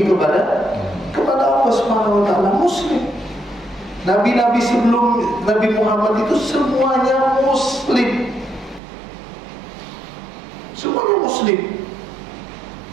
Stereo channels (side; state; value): left; drops out; at 8.8 s